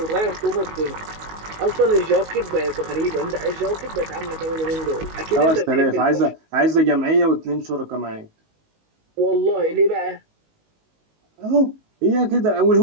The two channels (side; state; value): left; late; 19 ms